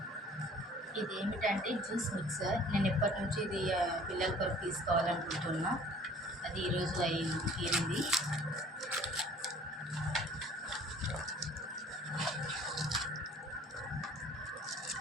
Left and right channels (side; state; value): both; normal; correlation 0.51